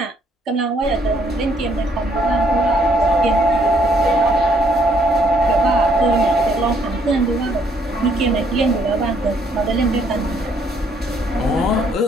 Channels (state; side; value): normal; both; correlation 0.68